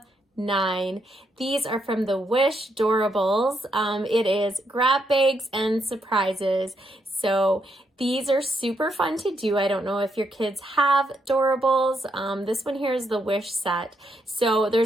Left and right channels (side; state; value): both; normal; correlation 0.78